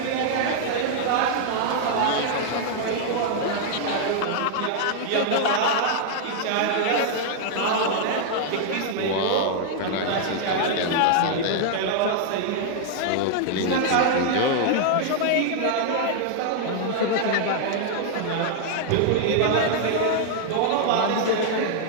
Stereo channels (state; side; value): different; both; correlation -0.01